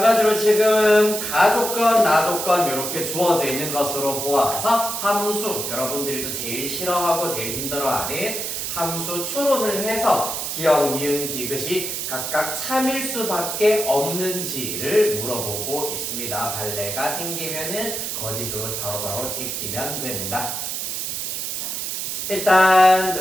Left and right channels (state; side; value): noise; right; hiss, 3 dB below the sound